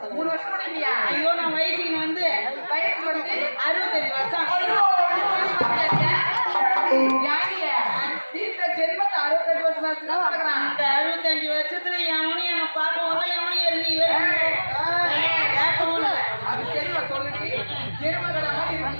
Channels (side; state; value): both; inverted; correlation -1.00